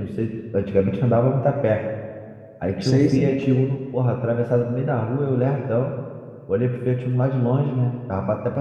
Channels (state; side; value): identical; both; correlation 1.00